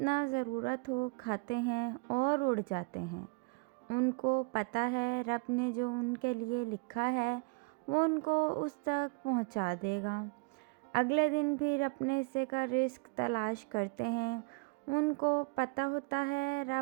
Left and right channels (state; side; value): quieter; left; 32.4 dB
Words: ज़रूरत हो खाते हैं और उड़ जाते हैं। उनको पता है रब ने जो उनके लिए लिखा है वो उनको उस तक पहुंचा देगा। अगले दिन फिर अपने हिस्से का रिस्क तलाश करते हैं। उनको पता होता है